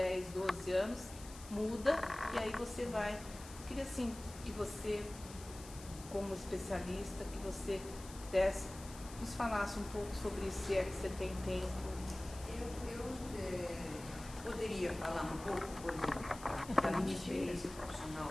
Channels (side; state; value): left; noise; hiss, 16 dB below the sound